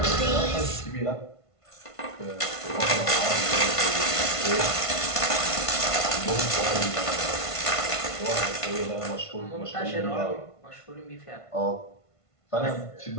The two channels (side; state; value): right; late; 1.5 ms